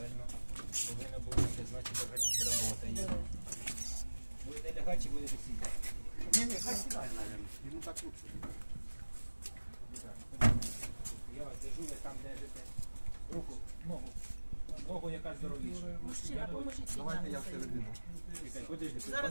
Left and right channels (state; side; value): inverted; both; correlation -1.00